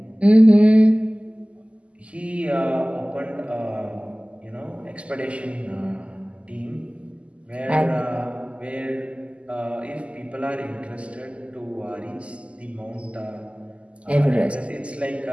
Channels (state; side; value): late; left; 0.058 ms